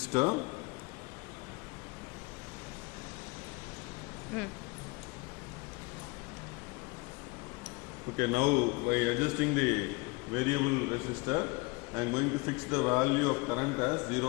okay, now by adjusting the variable resistor I am going to fix the value of current as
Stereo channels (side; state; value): right; quieter; 26.1 dB